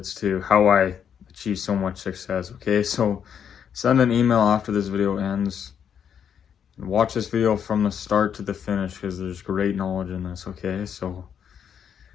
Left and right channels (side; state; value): right; quieter; 8.1 dB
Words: to how I achieve so much success, okay? So send an email after this video ends. Watch this video from the start to the finish because there's great knowledge in this, okay? So